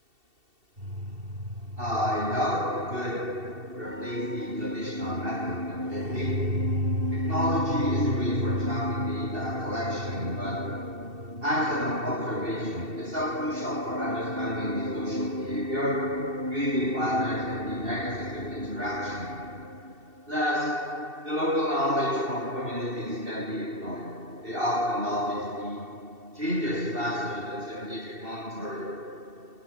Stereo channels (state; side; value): late; left; 2.7 ms